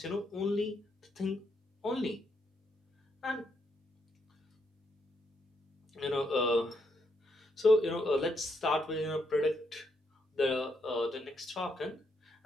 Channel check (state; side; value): normal; both; correlation 0.77